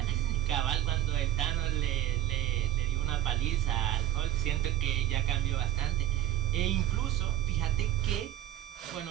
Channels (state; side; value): quieter; left; 12.9 dB